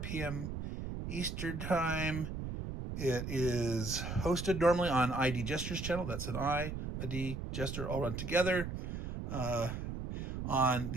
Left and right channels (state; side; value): noise; right; rumble, 5 dB below the sound